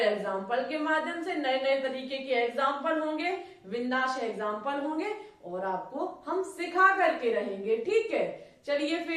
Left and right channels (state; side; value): identical; both; correlation 1.00